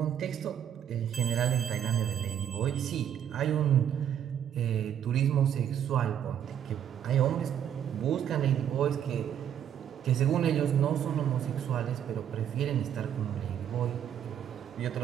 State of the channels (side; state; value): left; quieter; 9.5 dB